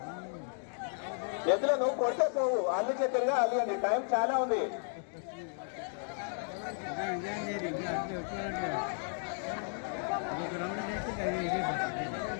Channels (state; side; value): silent; right; 55 dB below the other